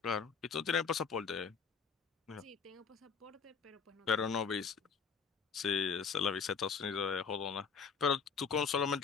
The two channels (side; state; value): right; quieter; 5.8 dB